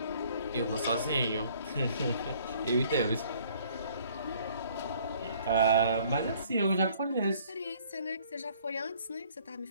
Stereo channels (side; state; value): both; inverted; correlation -0.58